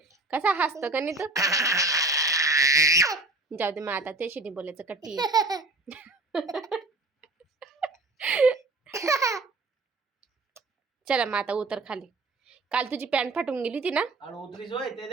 कसा हसतो का नाही तू? जाऊ दे मग आता त्याशी बोलायचं कट्टी. चला मग आता उतर खाली. काल तुझी पॅन्ट फाटून गेली होती ना?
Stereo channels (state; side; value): quieter; left; 3.0 dB